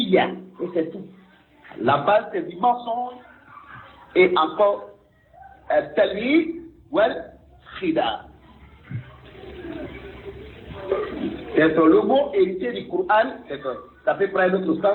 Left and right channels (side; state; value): both; identical; correlation 1.00